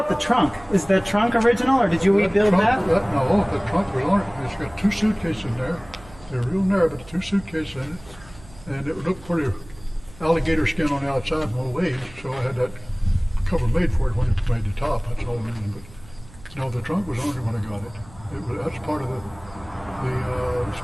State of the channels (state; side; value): noise; right; hum, 22 dB below the sound